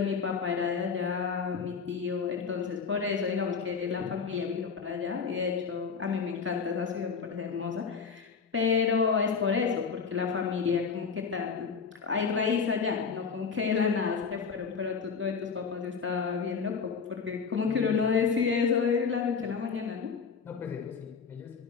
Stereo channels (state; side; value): quieter; right; 5.8 dB